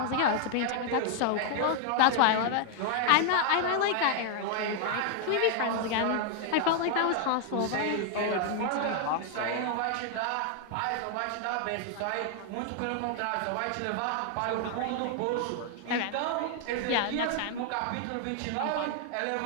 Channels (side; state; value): both; different; correlation 0.00